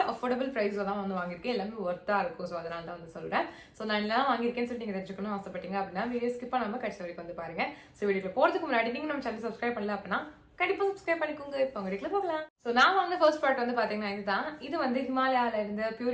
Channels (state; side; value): identical; both; correlation 1.00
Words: அஃபோர்டபுள் பிரைஸ்ல தான் வந்து வாங்கியிருக்கேன். எல்லாமே ஒர்த்தா இருக்கும். ஸோ அதனால தான் வந்து சொல்றேன். ஸோ நான் எல்லாம் வாங்கியிருக்கேன்னு சொல்லி நீங்க தெரிஞ்சுக்கணும் ஆசைப்பட்டீங்க அப்படின்னா வீடியோ ஸ்கிப் பண்ணாம கடைசி வரைக்கும் வந்து பாருங்க. ஸோ வீடியோ போறதுக்கு முன்னாடி நீங்க நம்ம சேனல் சப்ஸ்கிரைப் பண்ணல அப்படின்னா கண்டிப்பா சப்ஸ்கிரைப் பண்ணிக்கோங்க. இப்போ வீடியோக்குள்ள போகலாம். சோ நான் வாங்கின ஃபர்ஸ்ட் ப்ராடக்ட் வந்து பாத்தீங்கன்னா இதுதான். இது வந்து ஹிமாலயால இருந்து